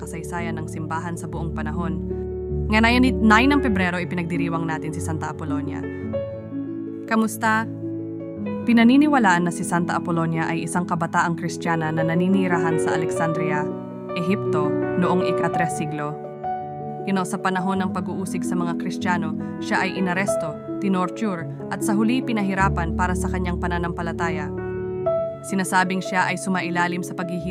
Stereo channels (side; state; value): both; identical; correlation 1.00